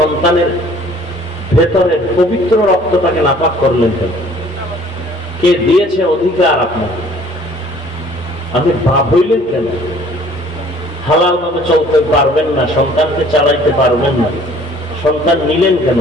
ভেতরের পবিত্র রক্তটাকে নাপাক করলেন কেন? কে দিয়েছে অধিকার আপনাকে? আপনি বাপ হইলেন কেন? হালাল ভাবে চলতে পারবেন না, সন্তানকে চালাইতে পারবেন না, সন্তান নিলেন কেন?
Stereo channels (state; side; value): normal; both; correlation 0.54